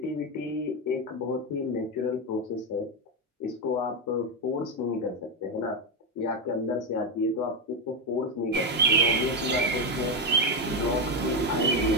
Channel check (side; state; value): both; normal; correlation 0.08